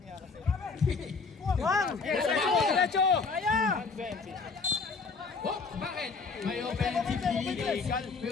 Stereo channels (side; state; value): right; quieter; 4.6 dB